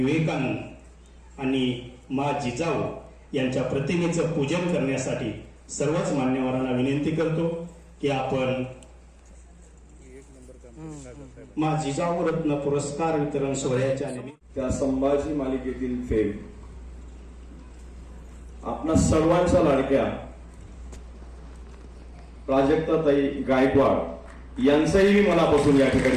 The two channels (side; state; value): both; identical; correlation 1.00